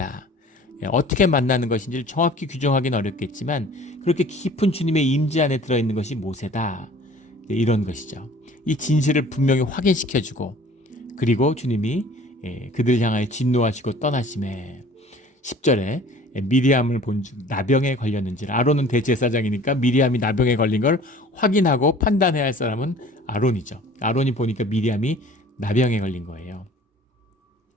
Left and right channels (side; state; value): both; normal; correlation 0.48